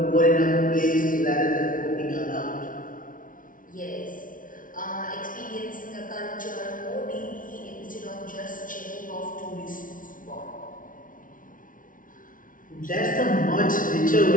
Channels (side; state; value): right; late; 0.39 ms